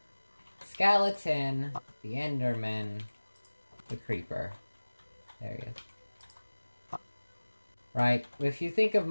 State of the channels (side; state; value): both; inverted; correlation -1.00